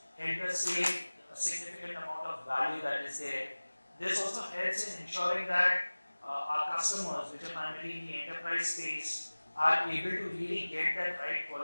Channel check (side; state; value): both; inverted; correlation -1.00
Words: helped us save a significant amount of value that is there. This also helps in ensuring that our customers, which are primarily in the enterprise space, are able to really get that right